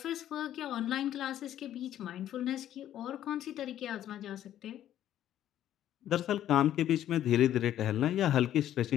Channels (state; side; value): quieter; right; 11.7 dB